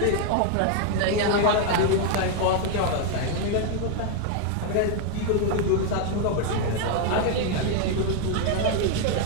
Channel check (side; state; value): both; different; correlation 0.00